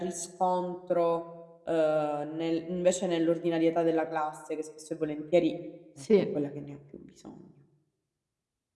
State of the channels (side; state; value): both; identical; correlation 1.00